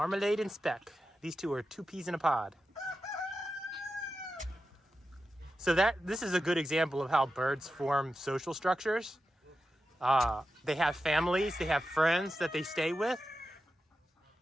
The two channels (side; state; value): both; normal; correlation 0.91